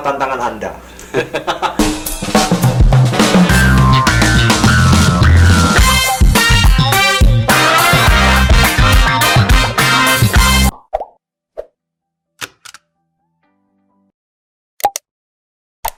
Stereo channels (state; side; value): identical; both; correlation 1.00